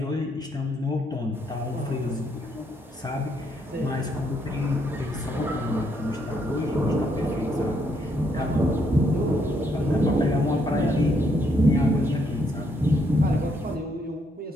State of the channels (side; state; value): both; normal; correlation 0.73